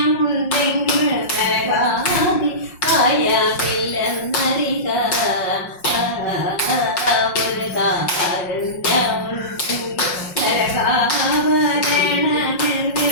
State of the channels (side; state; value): right; late; 5.6 ms